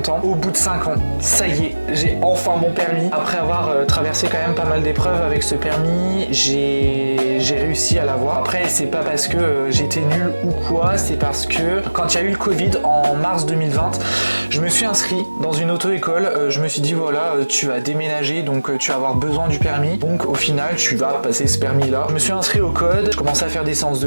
Au bout de 5 ans, ça y est, j'ai enfin mon permis. Après avoir traversé quand même pas mal d'épreuves avec ce permis, j'ai réussi à l'avoir. Après, c'est pas parce que j'étais nul ou quoi, c'est parce que quand il y a eu le Covid en mars 2020, je me suis inscrit dans une auto-école. Je me suis dit voilà, tu vas déménager, donc tu vas avoir besoin du permis. Donc au final, tu vas passer ce permis-là. Je me suis inscrit au code, je commençais à faire des séances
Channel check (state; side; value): inverted; both; correlation -1.00